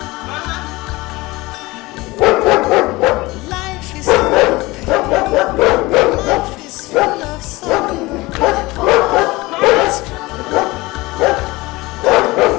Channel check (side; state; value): right; quieter; 21.6 dB